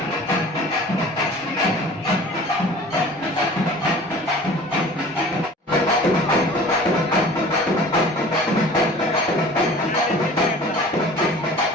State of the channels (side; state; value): both; normal; correlation 0.44